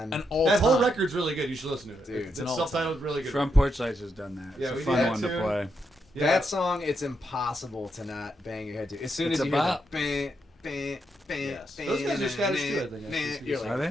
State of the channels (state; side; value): normal; both; correlation 0.81